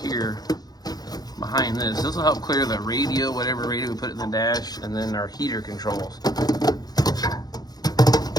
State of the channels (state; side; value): late; right; 0.19 ms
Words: behind this. This will help clear the radio, whatever radio we put in the dash, and then our heater controls.